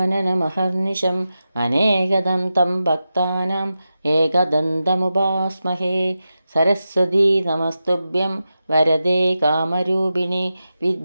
അനേകദം തം ഭക്താനാം ഏകദന്തമുപാസ്മഹേ. സരസ്വതീ നമസ്തുഭ്യം വരദേ കാമരൂപിണി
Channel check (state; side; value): inverted; both; correlation -0.91